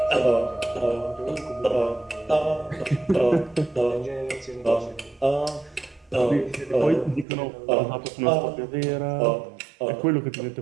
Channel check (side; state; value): left; drops out; at 7.2 s